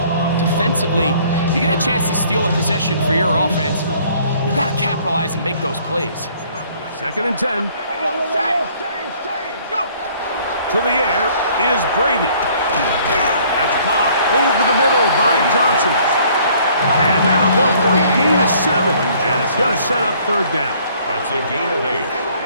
defensively, you get a chance to steal a possession for your offense. You got to capitalize and make those plays. 2nd and 10. Go. To the air is Brady. That's caught over the middle by Johnson. And that'll go for a gain of 7. And it's going to set up 3rd down. That's a gain of 8.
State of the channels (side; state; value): both; inverted; correlation -0.59